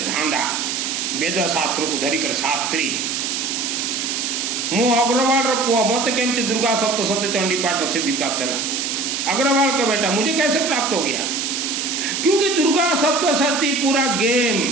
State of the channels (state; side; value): noise; right; hiss, 2 dB below the sound